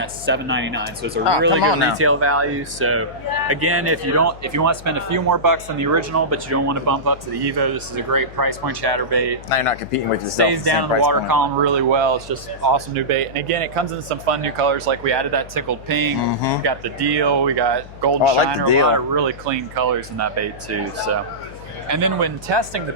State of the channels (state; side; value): noise; left; hum, 17 dB below the sound